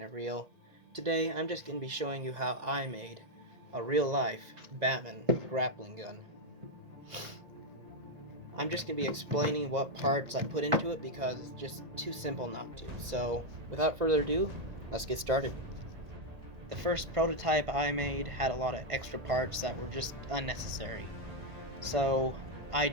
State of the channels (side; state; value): left; late; 1.8 ms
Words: It Real. Today I'm just going to be showing you how I made a real-life Batman grappling gun. I'm just going to be explaining what parts I put into it because it's just too simple not to. So without further ado, let's get started. The first prototype I made had a lot of extra parts that were just unnecessary. So I